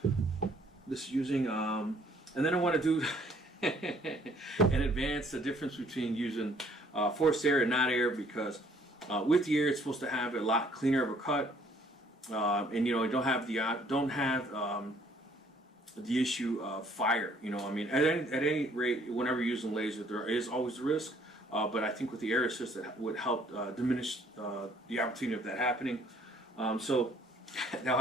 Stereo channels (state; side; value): normal; both; correlation 0.61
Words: and then I want to do and advance the difference between using forced air and not air, because with the air it's supposed to have a lot cleaner of a cut, and you don't have the issue of fire. At any rate, whenever you're using laser, there is always a risk, but I think with the air assist it would help diminish the opportunity of that happening. So that'll